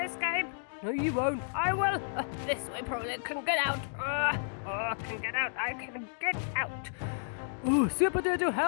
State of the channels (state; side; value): silent; right; digital silence